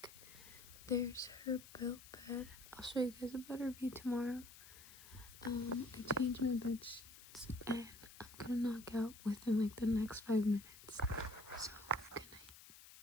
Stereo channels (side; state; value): left; noise; hiss, 17 dB below the sound